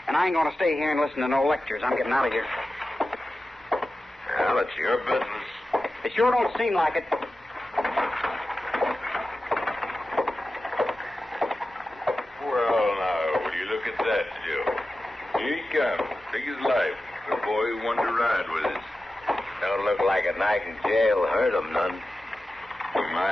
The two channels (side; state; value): both; normal; correlation 0.93